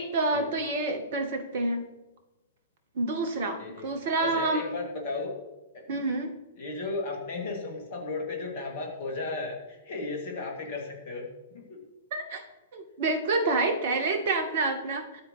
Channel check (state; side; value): inverted; both; correlation -0.33